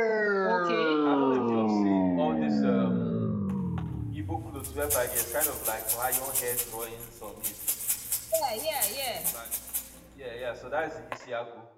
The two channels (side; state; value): both; identical; correlation 1.00